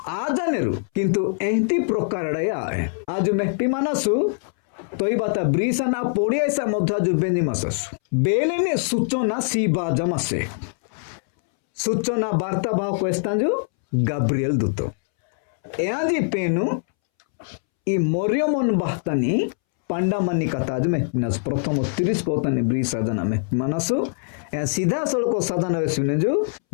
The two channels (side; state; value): right; silent; 63 dB below the other